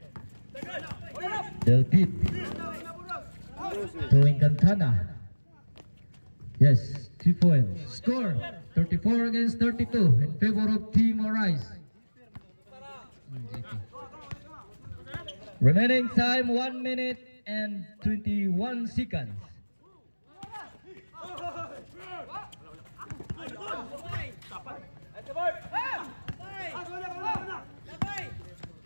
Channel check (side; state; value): both; inverted; correlation -1.00